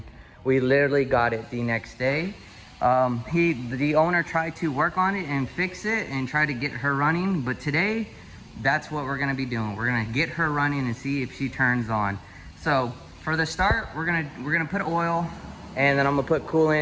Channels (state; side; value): identical; both; correlation 1.00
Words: we literally got it the next day. The owner tried to work on it and fix it and try to get her running, but today, that's what we're gonna be doing. We're gonna get her running and see if she turns on. So for the start, we're gonna put oil, and then I'm gonna put